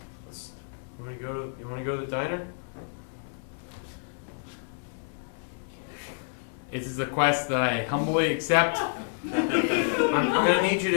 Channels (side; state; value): right; silent; digital silence